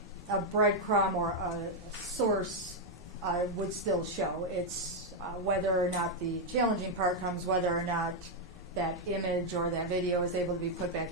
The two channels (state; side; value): normal; both; correlation 0.00